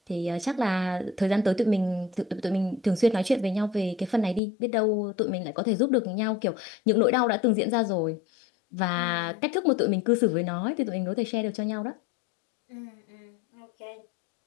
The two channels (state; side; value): drops out; right; at 4.4 s